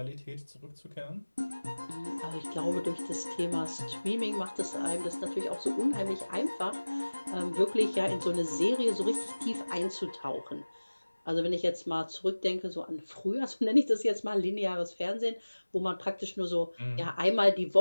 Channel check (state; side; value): inverted; both; correlation -1.00